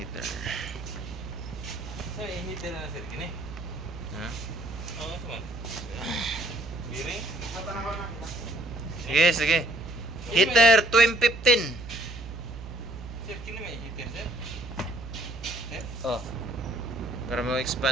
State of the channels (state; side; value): noise; right; hum, 10 dB below the sound